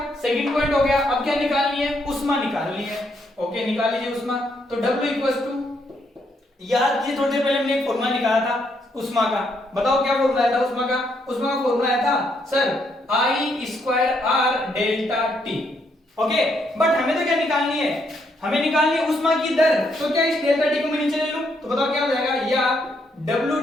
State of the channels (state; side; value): normal; both; correlation 0.75